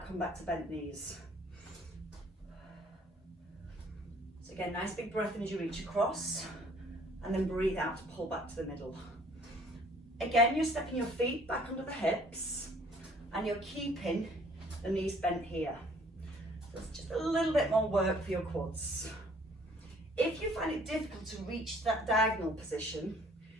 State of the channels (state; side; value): normal; both; correlation 0.58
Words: come back to bent knees. So again, nice big breath in as you reach across, and then breathe out to pull back to the middle. Again, you're stepping your feet back under the hips, and you're keeping the knees bent here. So it's just a little bit more work for your quads. If you find it difficult to reach that diagonal position,